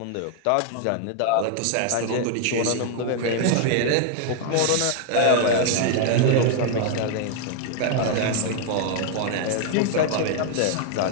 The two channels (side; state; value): both; different; correlation 0.00